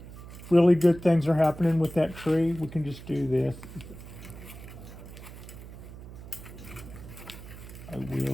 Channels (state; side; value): noise; right; hum, 14 dB below the sound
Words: really good things are happening with that tree. We can just do this. I